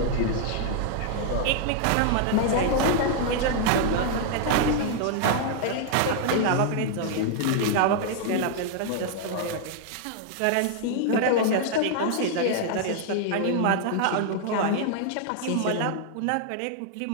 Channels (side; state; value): both; different; correlation 0.00